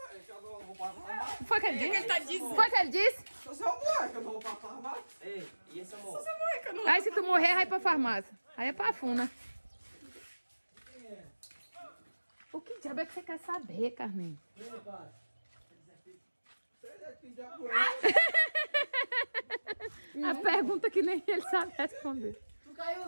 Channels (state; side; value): inverted; both; correlation -1.00